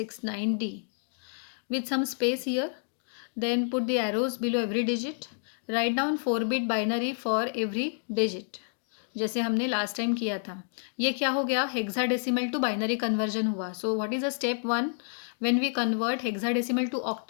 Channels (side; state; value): right; silent; digital silence